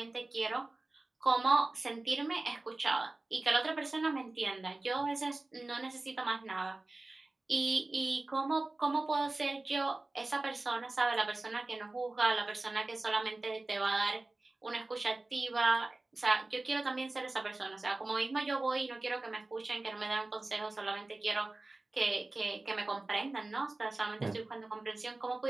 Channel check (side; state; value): left; quieter; 3.0 dB